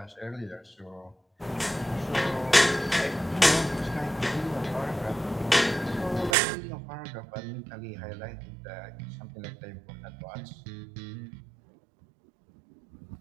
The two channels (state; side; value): drops out; left; at 6.4 s